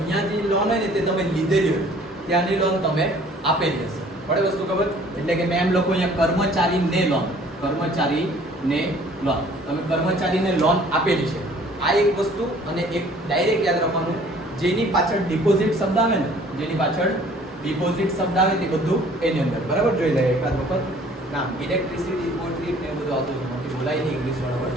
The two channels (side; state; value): both; normal; correlation 0.54